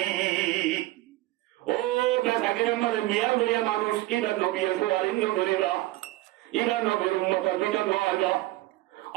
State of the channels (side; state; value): left; quieter; 17.9 dB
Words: ও বেচাকের আমাদের মিয়া লইয়া মানুষ ইবা নবী সুয়ারিন করিবা ইবা নবীর উম্মতের ভিতর নয়